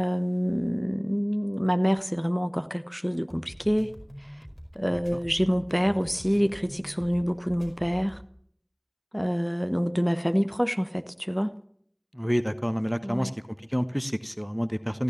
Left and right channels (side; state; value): both; identical; correlation 1.00